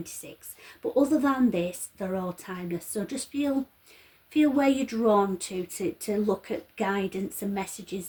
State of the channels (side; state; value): both; identical; correlation 1.00